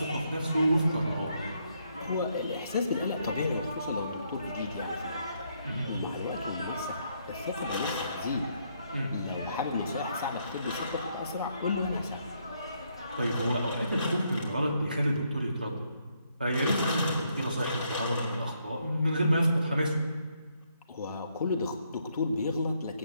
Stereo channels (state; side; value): inverted; both; correlation -0.74